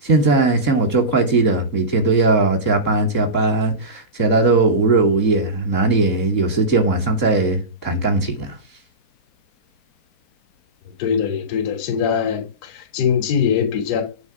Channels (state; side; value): late; right; 3.7 ms